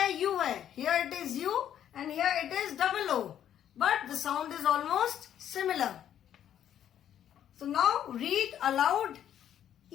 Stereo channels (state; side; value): quieter; right; 10.3 dB